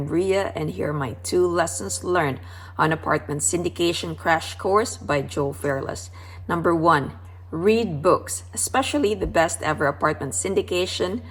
Ria, and here are my 2 lessons learned on apartment syndication crash course by Joe Fairless. Number 1, read books, especially the best ever apartment syndication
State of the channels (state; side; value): identical; both; correlation 1.00